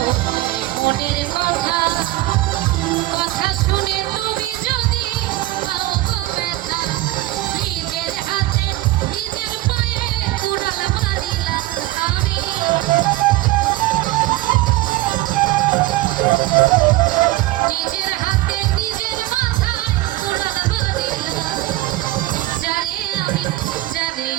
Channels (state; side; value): quieter; left; 17.3 dB